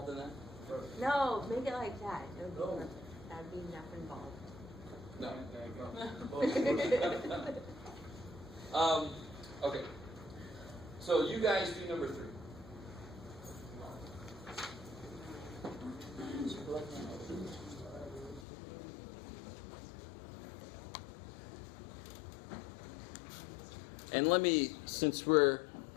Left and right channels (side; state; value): right; drops out; at 18.4 s